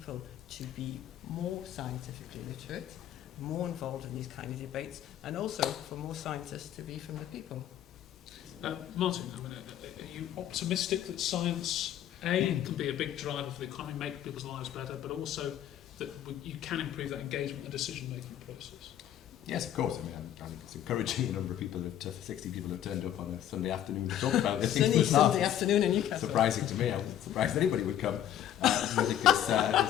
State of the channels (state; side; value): quieter; right; 11.2 dB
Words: to be more scientifically literate, more involved in these kind of debates, and also for more scientists to be from the people. Martin, I mean, are you optimistic that science, A, can be a big driver for the economy, make people's lives better, but also that you can improve that engagement and decision-making process? Yes, of course. I mean, I think it's encouraging. A number of people, 60 people have turned up on a Sunday afternoon to talk about this. Sunny Sunday afternoon in Newcastle. Surprising to me. I wasn't surprised anybody would come. I think